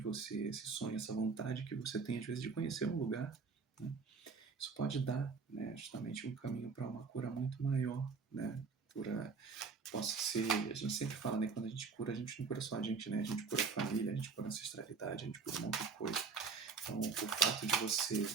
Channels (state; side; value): quieter; left; 5.1 dB